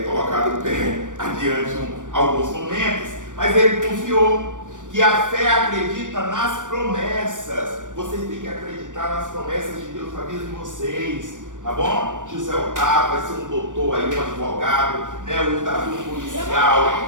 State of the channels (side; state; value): left; late; 0.87 ms